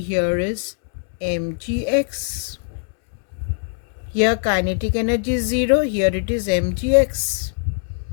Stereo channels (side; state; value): right; silent; 64 dB below the other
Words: here is mgx. Here kinetic energy is 0, here it is mgx.